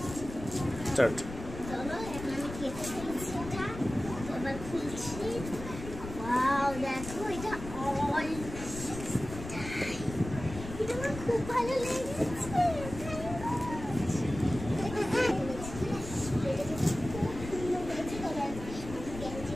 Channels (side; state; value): left; noise; rumble, 10 dB below the sound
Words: স্টার্ট। চলো এখন আমি কেটে ফেলছি এটা। এবার খুলছি। ওয়াও দেখো এটা অল এটা আমার খুব ভালো লেগেছে।